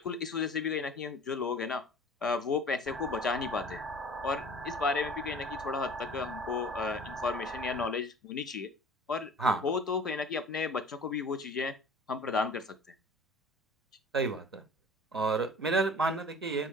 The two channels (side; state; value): both; normal; correlation 0.45